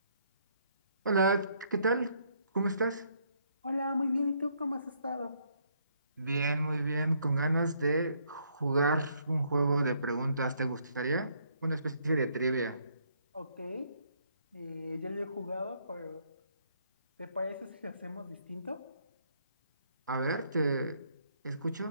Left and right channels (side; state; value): both; inverted; correlation -0.70